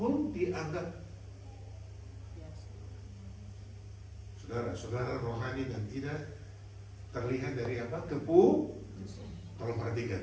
dianggap. Saudara rohani dan tidak terlihat dari apa? Tolong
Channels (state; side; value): identical; both; correlation 1.00